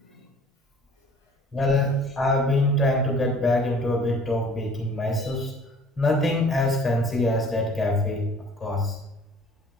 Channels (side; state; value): both; normal; correlation 0.51